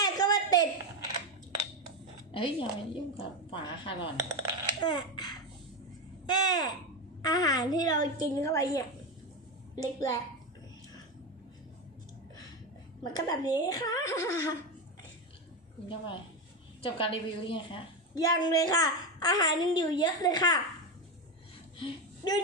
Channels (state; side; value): normal; both; correlation 0.14